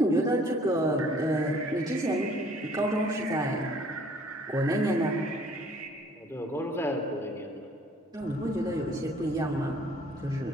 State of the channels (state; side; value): normal; both; correlation 0.57